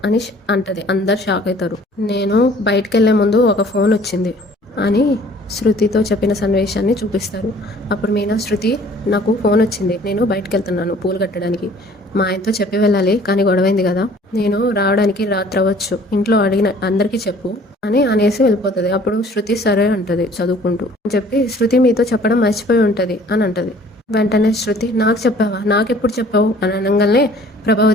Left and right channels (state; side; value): normal; both; correlation 0.54